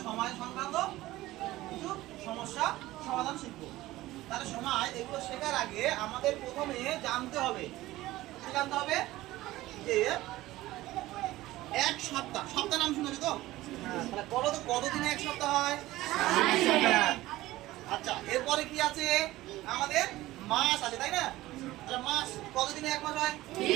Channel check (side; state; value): left; quieter; 17.1 dB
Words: সময় সংক্রান্ত কিছু সমস্যা সমাধান শিখবো। তাহলে সময় এগুলো শেখার আগে আমাদের প্রথমে জানতে হবে, কি জানতে হবে? যে এক সপ্তাহ, সপ্তাহ নাম শুনেছো তো? তাহলে বলো তো কতদিনে এক সপ্তাহ হয়? আচ্ছা, এরপরে কি আছে? আমাদের মাস আছে, তাই না? তাহলে মাস কতদিনে এক মাস হয়?